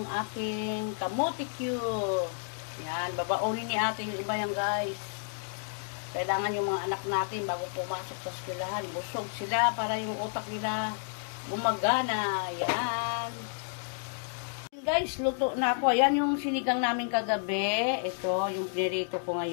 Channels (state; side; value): silent; right; digital silence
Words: aking kamote cube. Yan, babaonin ni ate yung iba yan, guys. Kailangan yung mga anak natin bago pumasok sa eskwelahan, busog sila para yung utak nila gumagana. Yan. Guys, luto na ako. Ayan yung sinigang namin kagabi. Ito, yung pinirito ko